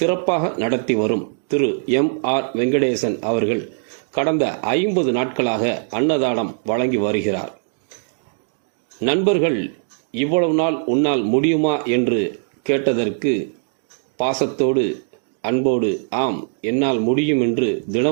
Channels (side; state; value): left; silent; 65 dB below the other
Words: நடத்தி வரும் திரு எம்.ஆர். வெங்கடேசன் அவர்கள் கடந்த 50 நாட்களாக அன்னதானம் வழங்கி வருகிறார். நண்பர்கள் இவ்வளவு நாள் உன்னால் முடியுமா என்று கேட்டதற்கு பாசத்தோடு அன்போடு ஆம் என்னால் முடியும் என்று